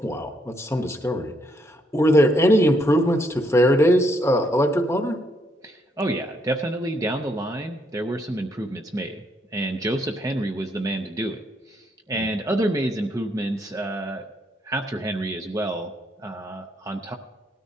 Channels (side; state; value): both; normal; correlation 0.73